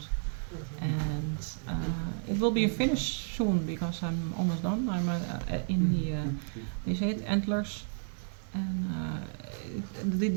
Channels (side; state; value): left; silent; digital silence